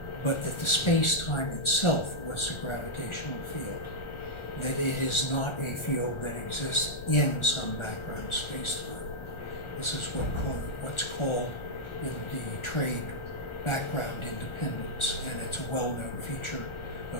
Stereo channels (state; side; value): late; right; 1.4 ms